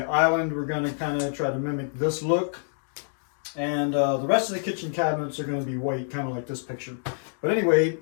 island we're going to kind of try to mimic this look, and the rest of the kitchen cabinets are going to be white, kind of like this picture. But anyway,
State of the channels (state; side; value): silent; right; digital silence